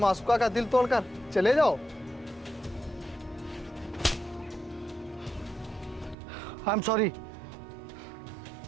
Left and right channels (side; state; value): left; drops out; at 6.2 s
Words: का दिल तोड़कर चले जाओ। I am sorry.